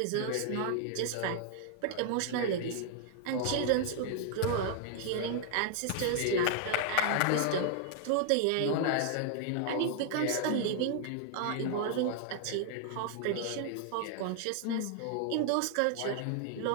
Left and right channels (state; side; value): different; both; correlation 0.00